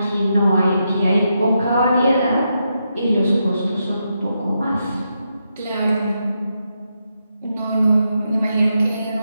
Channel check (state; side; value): inverted; both; correlation -0.83